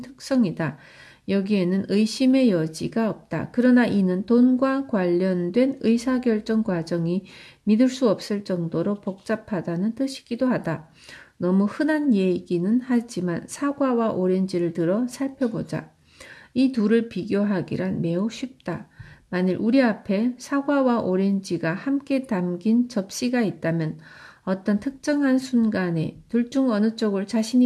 특성이다. 여기에는 의심의 여지가 없다. 그러나 이는 돈과 관련된 의사결정 과정이 믿을 수 없을 정도로 복잡하다는 뜻이기도 하다. 너무 흔한 얘기는 하지만 사과와 오렌지를 들어 살펴보자. 이 둘을 비교하기란 매우 쉽다. 만일 우리 앞에 사과와 오렌지가 함께 담긴 접시가 있다면 어떤 특정한 순간에 둘 중 어느 쪽을 자신이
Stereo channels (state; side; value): identical; both; correlation 1.00